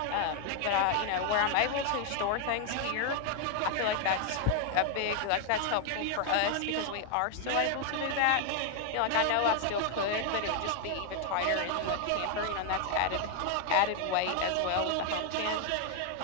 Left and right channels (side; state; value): both; different; correlation 0.00